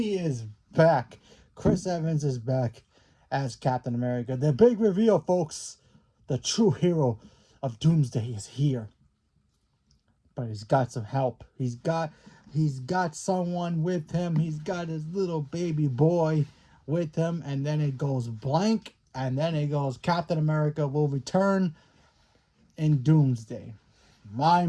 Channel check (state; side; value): identical; both; correlation 1.00